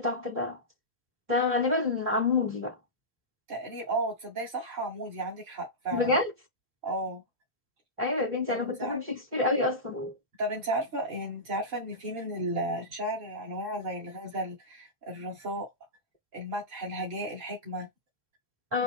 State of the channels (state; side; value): late; left; 4.5 ms